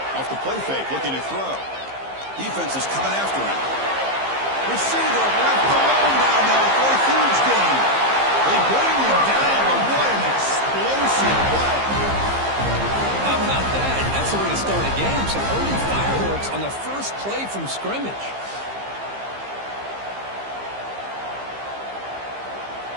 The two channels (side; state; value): left; late; 15 ms